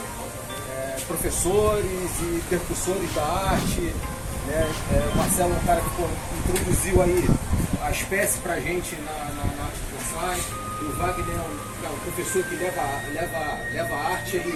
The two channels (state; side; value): identical; both; correlation 1.00